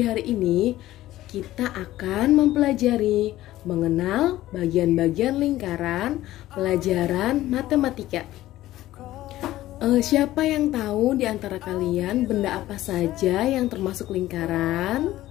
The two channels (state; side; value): quieter; right; 15.2 dB